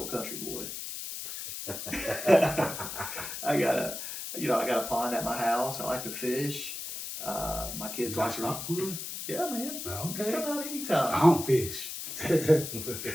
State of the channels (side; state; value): left; noise; hiss, 7 dB below the sound